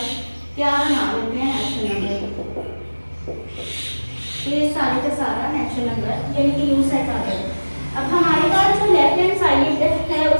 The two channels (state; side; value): inverted; both; correlation -1.00